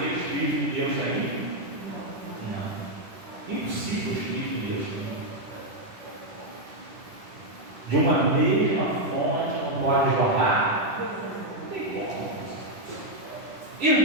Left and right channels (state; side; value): late; left; 10 ms